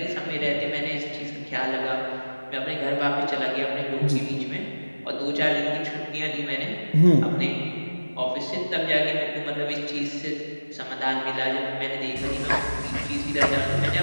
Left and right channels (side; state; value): both; inverted; correlation -1.00